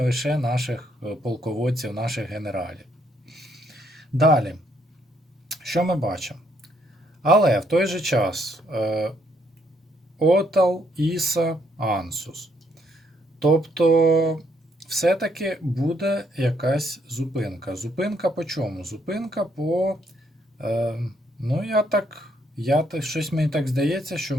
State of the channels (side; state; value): both; normal; correlation 0.71